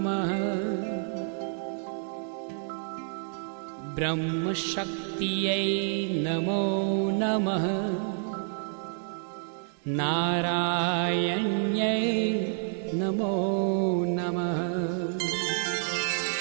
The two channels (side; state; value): left; silent; 59 dB below the other